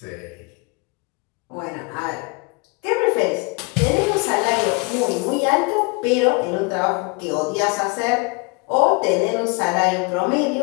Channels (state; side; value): quieter; right; 30.0 dB